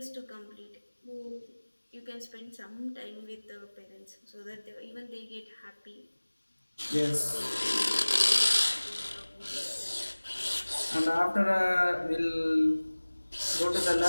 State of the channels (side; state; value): both; inverted; correlation -1.00